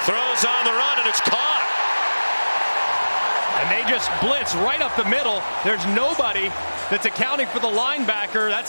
Throws on the run, and it's caught. And they just blitz right up the middle. There's nobody that's accounting for the linebacker.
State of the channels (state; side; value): inverted; both; correlation -1.00